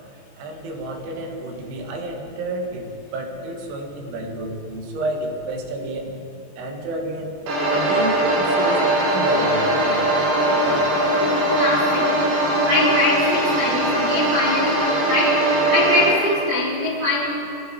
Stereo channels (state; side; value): late; left; 21 ms